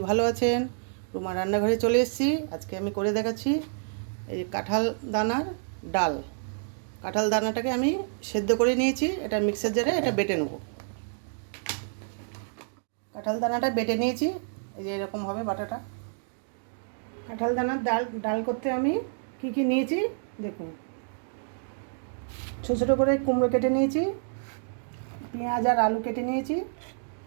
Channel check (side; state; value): left; silent; digital silence